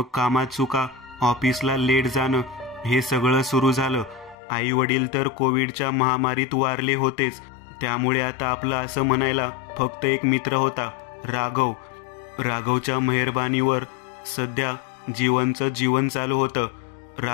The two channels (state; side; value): drops out; right; at 4.4 s